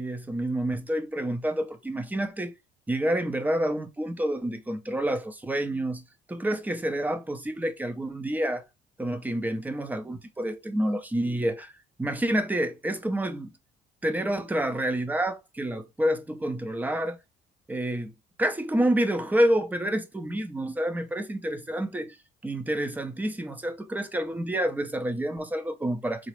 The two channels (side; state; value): both; normal; correlation 0.87